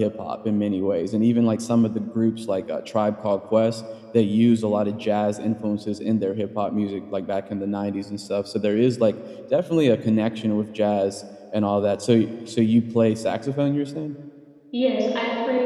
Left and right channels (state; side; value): identical; both; correlation 1.00